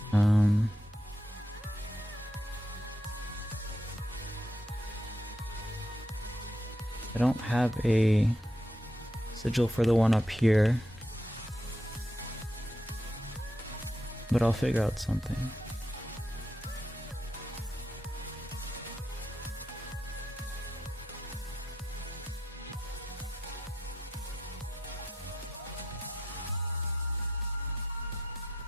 I don't have a sigil for the one up here, but I'll figure out something.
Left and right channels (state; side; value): normal; both; correlation 0.82